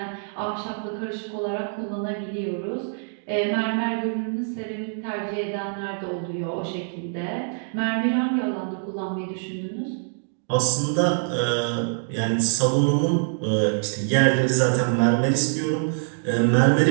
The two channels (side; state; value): left; silent; digital silence